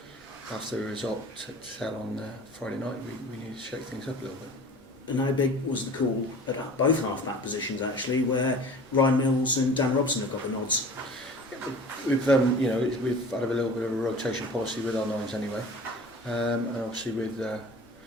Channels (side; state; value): both; normal; correlation 0.42